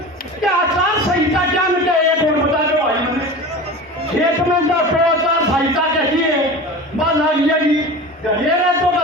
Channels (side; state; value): both; normal; correlation 0.33